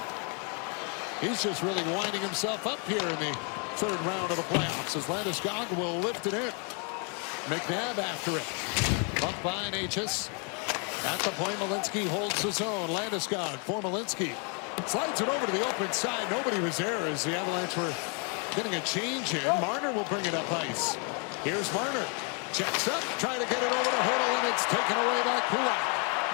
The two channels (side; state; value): right; quieter; 37.7 dB